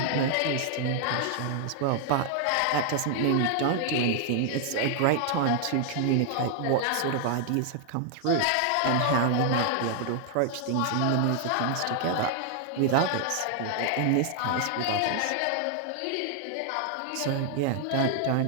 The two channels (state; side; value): different; both; correlation 0.00